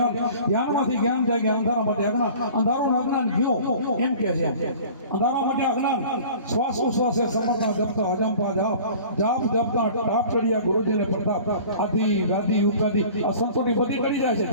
જ્ઞાન જાય કે અંધારા માટે અંધારું અજ્ઞાન ગયું એમ કે છે અંધારા માટે અજ્ઞાન શ્વાસ ઉશ્વાસે સમર્પણ જપતા અજંપા જાપ જપતા ટાપ ચડિયા ગુરુજીને પ્રતાપ આદિ વ્યાધિ ઉપાધિ આ સંતોની બધી કરી જાય છે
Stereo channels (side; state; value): both; inverted; correlation -0.44